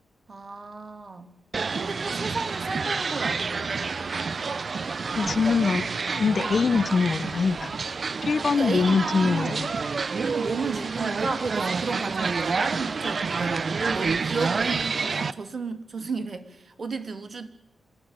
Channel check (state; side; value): normal; both; correlation 0.86